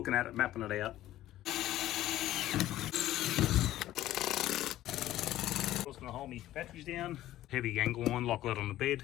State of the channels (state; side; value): quieter; right; 14.2 dB